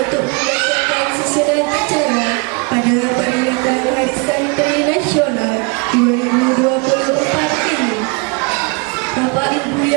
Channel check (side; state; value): left; quieter; 31.1 dB